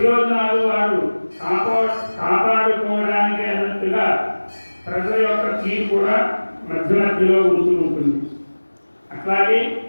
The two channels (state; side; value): inverted; both; correlation -1.00